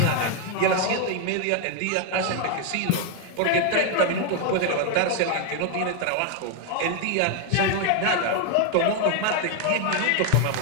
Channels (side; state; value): both; different; correlation 0.01